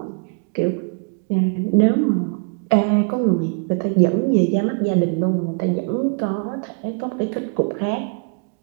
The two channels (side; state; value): left; quieter; 38.2 dB